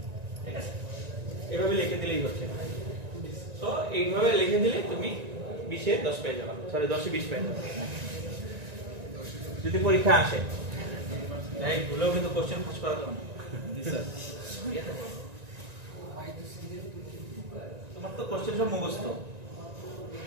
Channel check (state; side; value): late; left; 1.9 ms